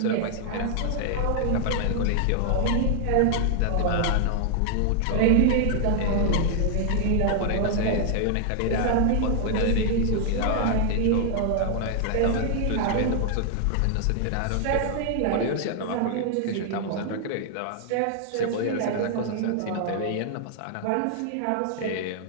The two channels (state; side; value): different; both; correlation 0.00